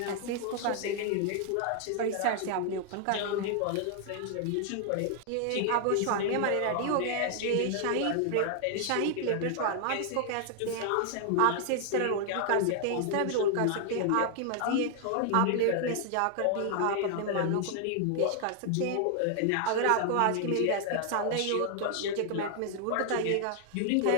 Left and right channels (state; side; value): different; both; correlation 0.00